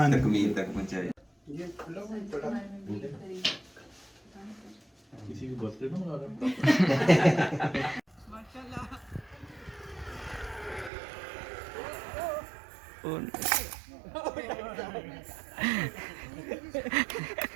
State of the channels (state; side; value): drops out; left; at 10.9 s